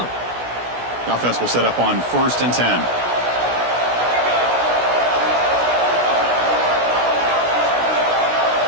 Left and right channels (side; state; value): left; late; 16 ms